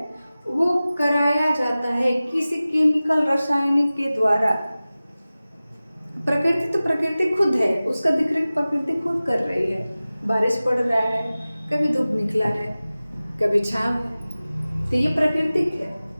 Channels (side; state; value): both; inverted; correlation -0.97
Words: वो कराया जाता है किसी केमिकल रासायनिक के द्वारा। प्रकृति खुद है, उसका देखरेख प्रकृति खुद कर रही है। बारिश पड़ रहा है, कभी धूप निकला है, कभी छांव है, तो ये प्राकृतिक है।